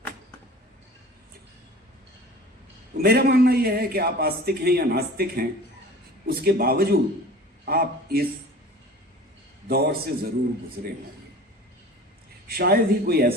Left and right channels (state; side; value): normal; both; correlation 0.41